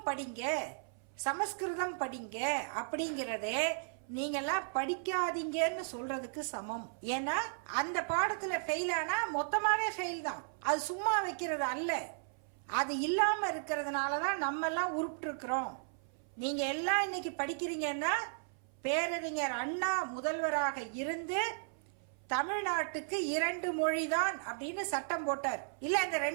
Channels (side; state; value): left; silent; 54 dB below the other